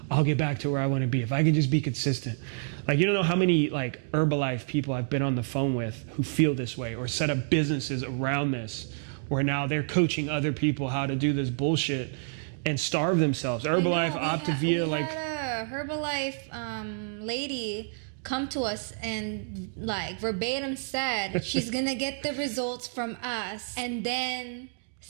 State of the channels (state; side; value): silent; left; digital silence